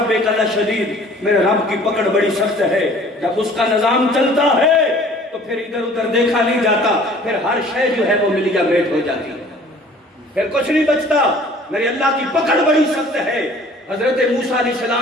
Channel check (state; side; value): normal; both; correlation 0.51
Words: لشدید، میرے رب کی پکڑ بڑی سخت ہے۔ جب اس کا نظام چلتا ہے تو پھر ادھر ادھر دیکھا نہیں جاتا، پھر ہر شے جو ہے وہ ملیا بیٹ ہو جاتی ہے، پھر کچھ نہیں بچتا۔ میرے اللہ کی پکڑ بڑی سخت ہے۔ حضرت موسیٰ علیہ